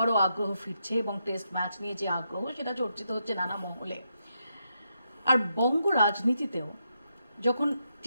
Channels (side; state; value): both; inverted; correlation -0.82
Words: আগ্রহ ফিরছে এবং টেস্ট ম্যাচ নিয়ে যে আগ্রহ সেটা চর্চিত হচ্ছে নানা মহলে। আর বঙ্গ রাজনীতিতেও যখন